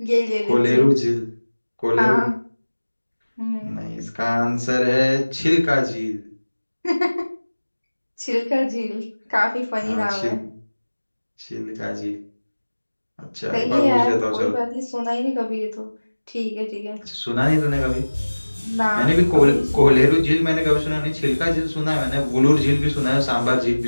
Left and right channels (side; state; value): both; inverted; correlation -1.00